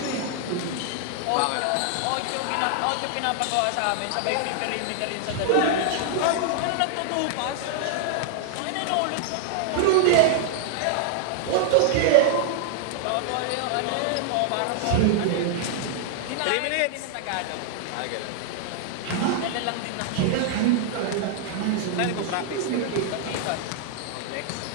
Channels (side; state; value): both; different; correlation -0.01